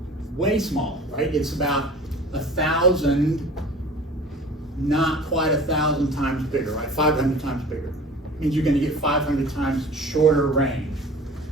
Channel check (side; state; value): both; normal; correlation 0.42